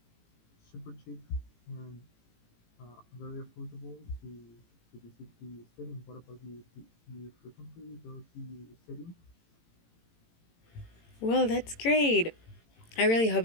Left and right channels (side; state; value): right; late; 18 ms